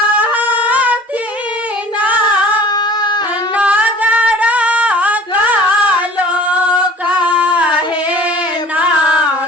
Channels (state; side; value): normal; both; correlation 0.46